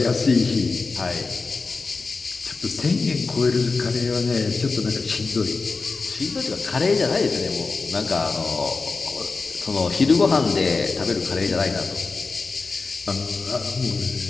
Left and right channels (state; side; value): quieter; right; 4.1 dB